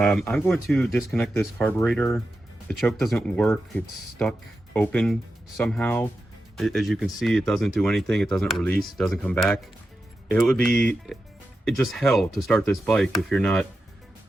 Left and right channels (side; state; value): both; normal; correlation 0.90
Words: going to disconnect this carburetor. The choke doesn't work. It's stuck open somehow. As you can see, it doesn't do anything. It doesn't release, it doesn't come back. It would be just hell to start this bike if